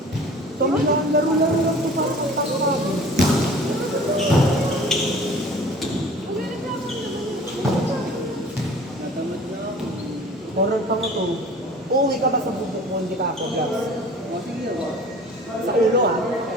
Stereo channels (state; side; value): normal; both; correlation 0.45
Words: Laro-laro lang ito para sa tawag. Horror pa mo to. Uuwi ka ba sa bubuk mo, hindi ka ako, Glass? Sa ulo ah.